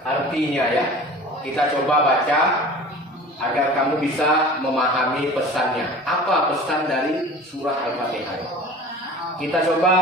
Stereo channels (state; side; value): normal; both; correlation 0.40